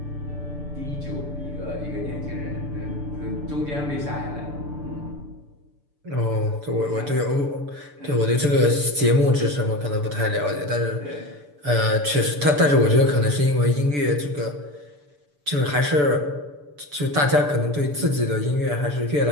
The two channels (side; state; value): left; late; 6.9 ms